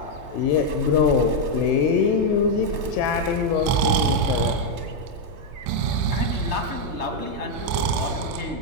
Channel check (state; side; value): late; left; 3.3 ms